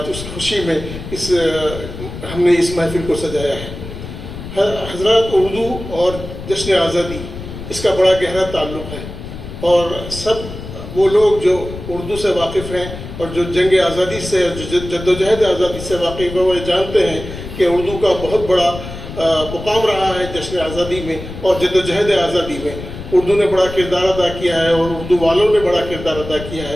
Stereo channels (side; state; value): left; noise; rumble, 10 dB below the sound